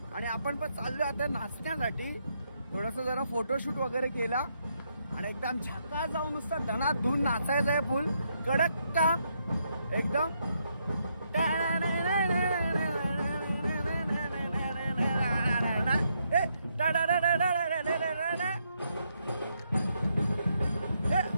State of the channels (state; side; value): inverted; both; correlation -0.77